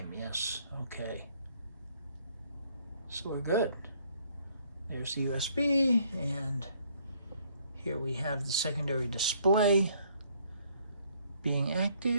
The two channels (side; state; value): both; inverted; correlation -0.65